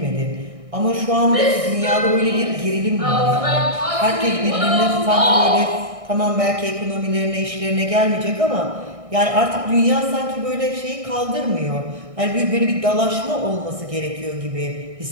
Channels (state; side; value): late; left; 1.6 ms